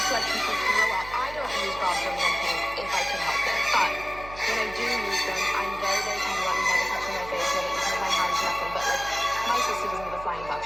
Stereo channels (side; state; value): right; noise; hum, 15 dB below the sound